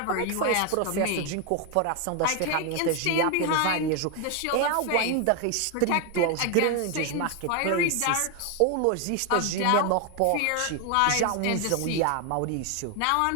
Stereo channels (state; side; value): different; both; correlation 0.01